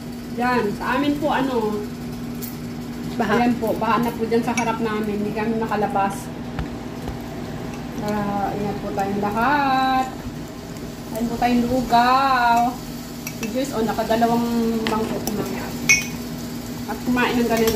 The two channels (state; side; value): identical; both; correlation 1.00